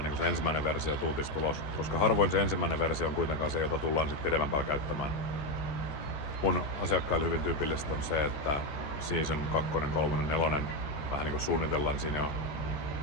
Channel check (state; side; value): late; right; 14 ms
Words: niin se ensimmäinen versio tuutistulos, koska harvoin se ensimmäinen versio on kuitenkaan se, jota tullaan sitten pidemmän päällä käyttämään. Mun asiakkaille hyvin tyypillistä on se, että season 2, 3, 4 vähän niin kuin suunnitellaan siinä jo,